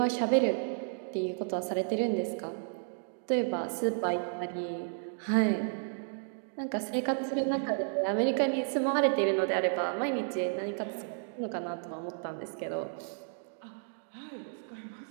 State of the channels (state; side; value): silent; left; digital silence